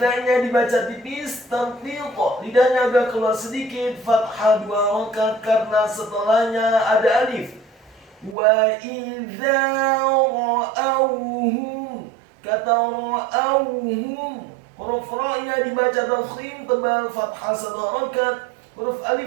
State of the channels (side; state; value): left; drops out; at 8.3 s